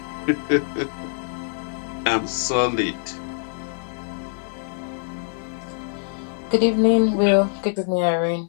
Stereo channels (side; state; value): right; silent; 63 dB below the other